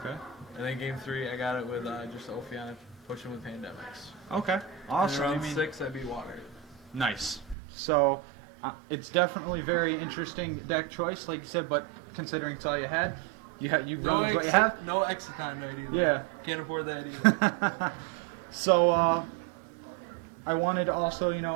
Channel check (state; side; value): drops out; left; at 7.6 s